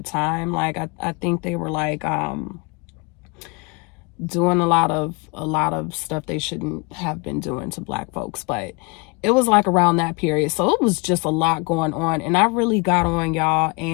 time. Like I think they were like doing a lot of stuff they shouldn't have been doing to Black folks, but it was like around that period. So it was just a lot going on, and I really got on, y'all,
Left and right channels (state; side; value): quieter; right; 29.1 dB